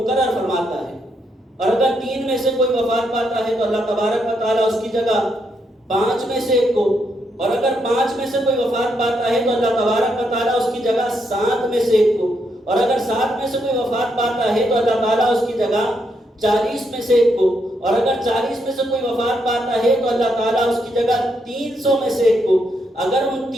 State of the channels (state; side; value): normal; both; correlation 0.78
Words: فرماتا ہے، اور اگر 3 میں سے کوئی وفات پاتا ہے تو اللہ تبارک و تعالی اس کی جگہ 5 میں سے ایک کو، اور اگر 5 میں سے کوئی وفات پاتا ہے تو اللہ تبارک و تعالی اس کی جگہ 7 میں سے ایک کو، اور اگر 7 میں سے کوئی وفات پاتا ہے تو اللہ تعالیٰ اس کی جگہ 40 میں سے ایک کو، اور اگر 40 میں سے کوئی وفات پاتا ہے تو اللہ تعالیٰ اس کی جگہ 300 میں سے ایک کو، اگر ان